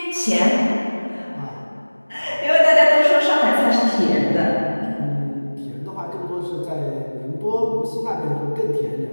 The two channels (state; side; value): inverted; both; correlation -1.00